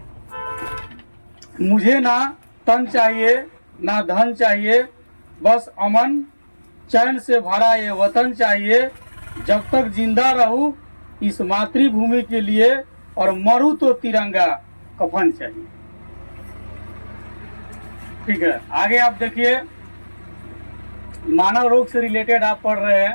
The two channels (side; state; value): both; inverted; correlation -1.00